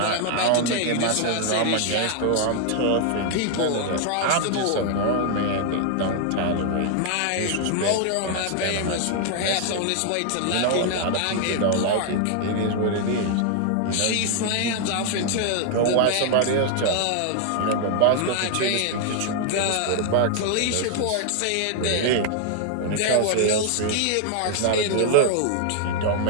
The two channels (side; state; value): both; different; correlation 0.00